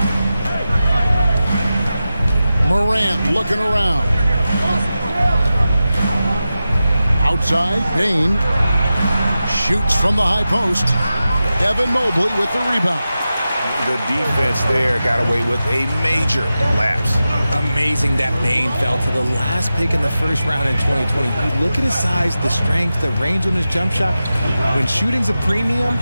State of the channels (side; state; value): both; inverted; correlation -0.93